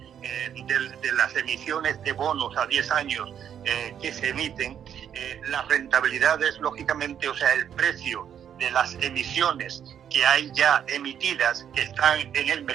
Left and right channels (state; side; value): quieter; left; 9.0 dB